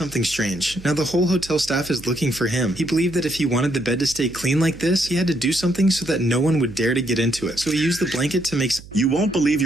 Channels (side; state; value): right; noise; hum, 18 dB below the sound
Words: strange. Now the whole hotel staff is looking for him. He believed that if he wanted the bed to stay clean like this, he had to do something so that no one would dare to get into it. So he used the blanket to make You won't believe